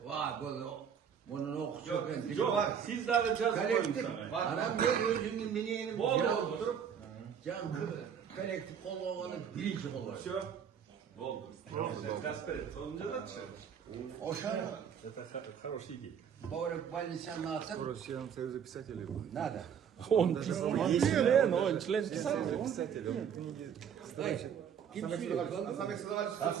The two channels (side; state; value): left; quieter; 7.9 dB